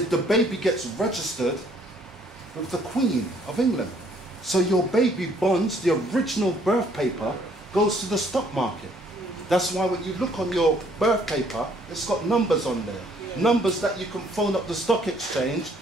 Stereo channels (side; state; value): both; normal; correlation 0.63